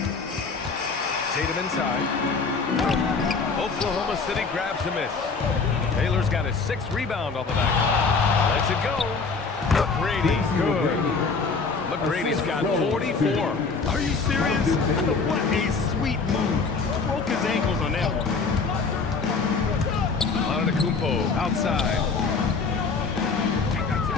Tatum inside. Oklahoma City grabs a miss. Taylor's got his 6th rebound on the night. Lets it go. McGrady, good. McGrady's got 44. Are you serious? What a sweet move. Broke his ankles on that one. Antetokounmpo outside.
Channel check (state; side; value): quieter; right; 4.6 dB